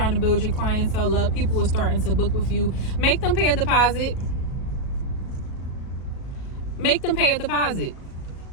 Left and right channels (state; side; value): late; right; 37 ms